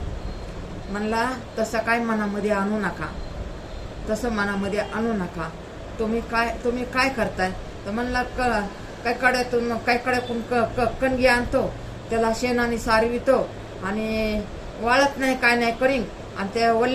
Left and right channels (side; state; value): both; identical; correlation 1.00